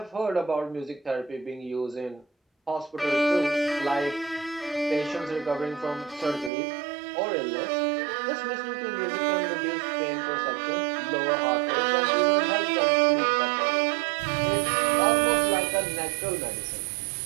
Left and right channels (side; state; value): left; drops out; at 6.5 s